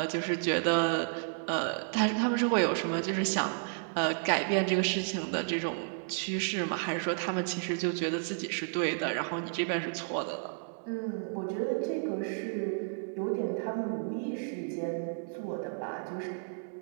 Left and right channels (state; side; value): silent; left; 56 dB below the other